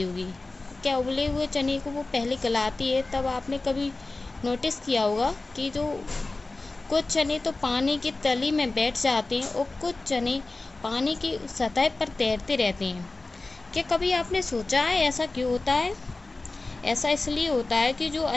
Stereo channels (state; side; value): quieter; right; 3.3 dB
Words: होगी। क्या उबले हुए चने को वो पहले गलाती है, तब आपने कभी नोटिस किया होगा कि जो कुछ चने तो पानी की तली में बैठ जाते हैं और कुछ चने पानी की सतह पर तैरते रहते हैं। क्या कभी आपने सोचा है ऐसा क्यों होता है? ऐसा इसलिए होता है कि जो